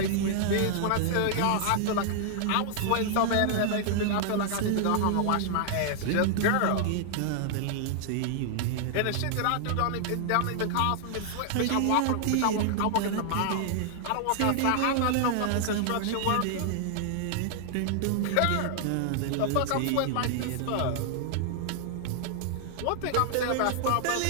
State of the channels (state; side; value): different; both; correlation -0.01